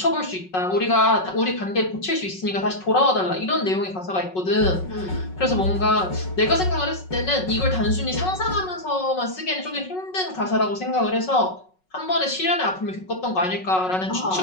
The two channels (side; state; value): right; late; 5.4 ms